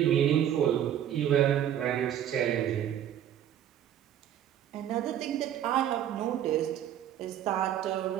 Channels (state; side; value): quieter; left; 10.6 dB